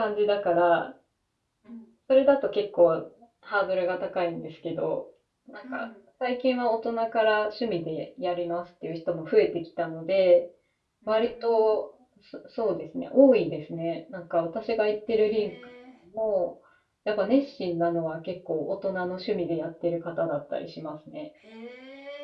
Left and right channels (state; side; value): identical; both; correlation 1.00